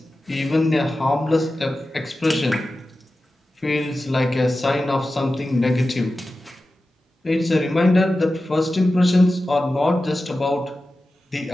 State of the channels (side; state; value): both; normal; correlation 0.94